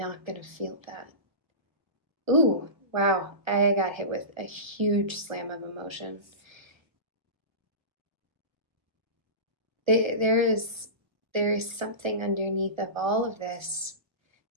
gonna feel that. Ooh, wow, I got hit with a huge slam of emotion. There is something underneath of all of this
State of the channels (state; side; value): late; left; 1.3 ms